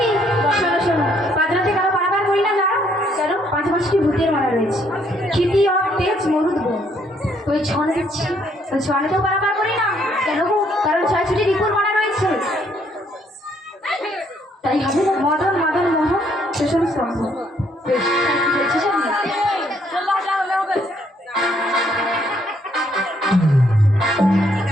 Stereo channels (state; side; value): normal; both; correlation 0.68